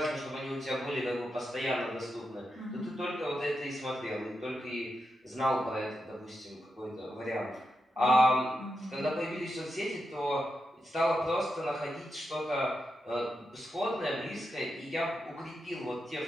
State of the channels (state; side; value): normal; both; correlation 0.86